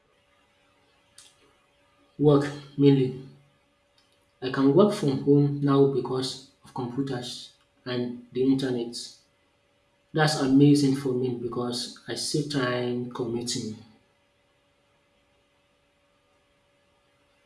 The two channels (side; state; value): both; identical; correlation 1.00